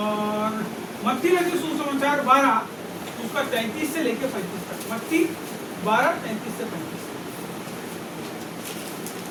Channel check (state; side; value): identical; both; correlation 1.00